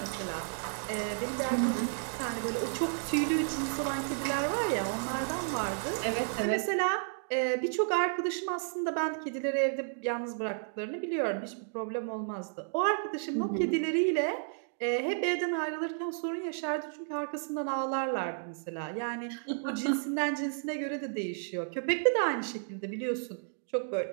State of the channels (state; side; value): silent; left; digital silence